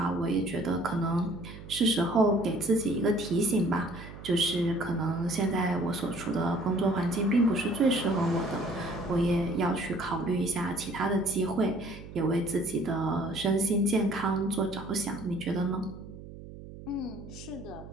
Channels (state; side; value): noise; right; hum, 14 dB below the sound